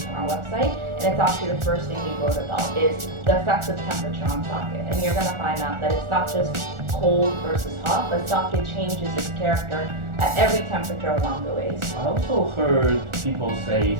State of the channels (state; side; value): late; left; 1.4 ms